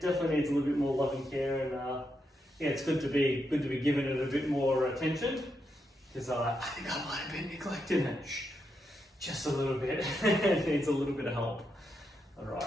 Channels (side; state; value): both; normal; correlation 0.83